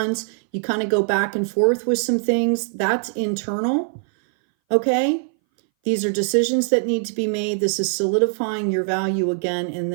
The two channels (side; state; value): left; silent; 60 dB below the other